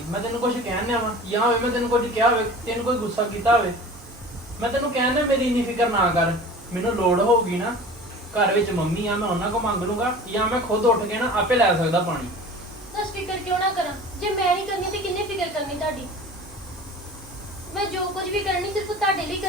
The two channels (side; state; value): both; normal; correlation 0.40